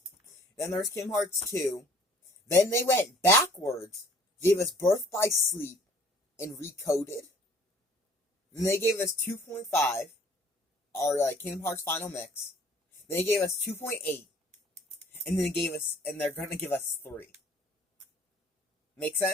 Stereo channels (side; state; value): both; normal; correlation 0.55